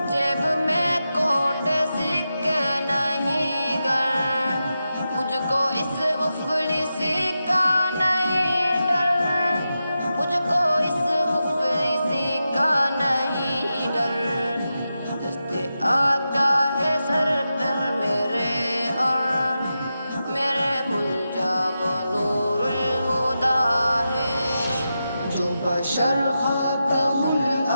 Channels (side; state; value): both; inverted; correlation -0.90